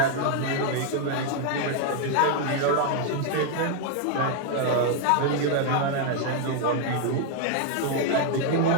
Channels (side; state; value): both; different; correlation 0.00